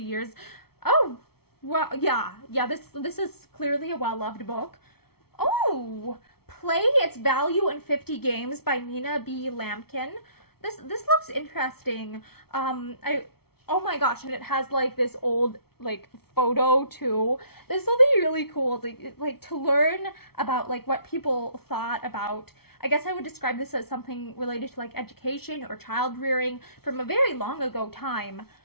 years. Oh, well, yeah, this is clearly a well-loved book. Oh, Play Its Value in 50 Games by Nina B. Lampkin. This looks interesting. Oh my gosh, and it has like this old like photo too. This will be really cool to learn about like what people thought about. I guess I would describe this as something related to like education or child rearing from a very long ago time.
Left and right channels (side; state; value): right; late; 0.95 ms